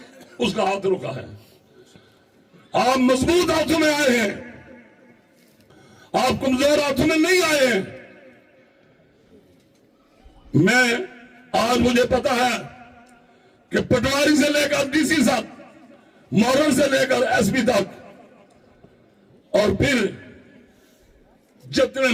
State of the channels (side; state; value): both; identical; correlation 1.00